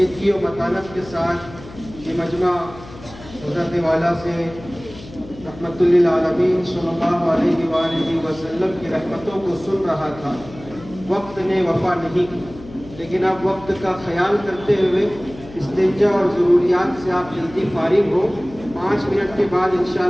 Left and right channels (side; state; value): left; noise; hum, 17 dB below the sound